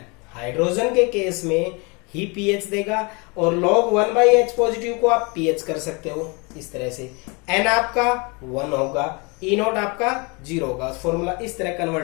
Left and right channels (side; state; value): right; quieter; 29.8 dB